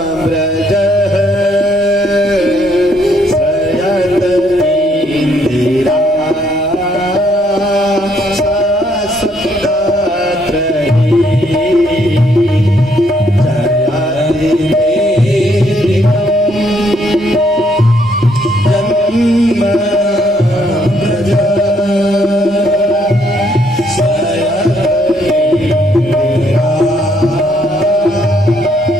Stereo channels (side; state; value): both; normal; correlation 0.69